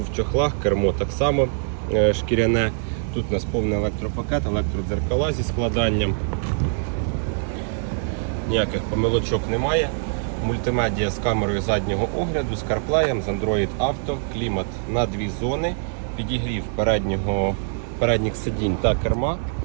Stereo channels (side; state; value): left; silent; digital silence